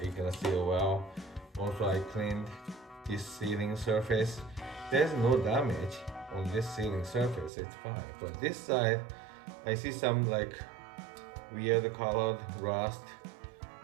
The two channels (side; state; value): left; drops out; at 7.5 s